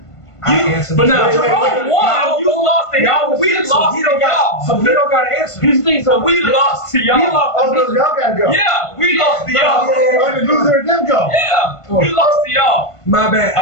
now, Wait, wait, Jerome wait. won. You lost to y'all. We lost to y'all. So he don't got to answer. Here's the thing, So we lost to y'all. We lost Oh, no, y'all gotta go. Yeah, we lost to y'all. Oh, the loser and them go. Yeah, we lost to y'all. My bad.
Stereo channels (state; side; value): late; right; 1.5 ms